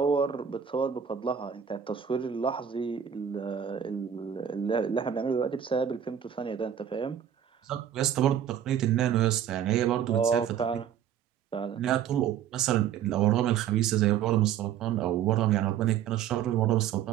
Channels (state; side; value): quieter; left; 9.2 dB